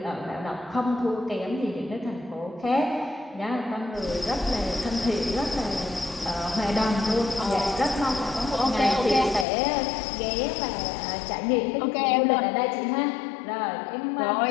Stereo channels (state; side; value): drops out; right; at 9.5 s